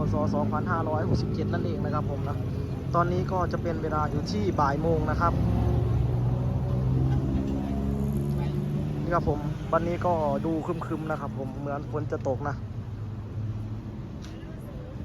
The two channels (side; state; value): both; identical; correlation 1.00